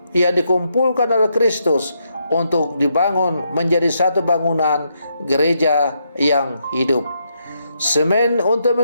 yang dikumpulkan oleh Kristus untuk dibangun menjadi satu bangunan gereja yang hidup. Semen untuk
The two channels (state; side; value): inverted; both; correlation -0.79